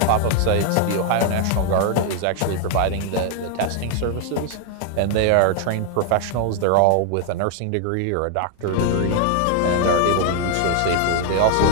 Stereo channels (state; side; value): different; both; correlation 0.00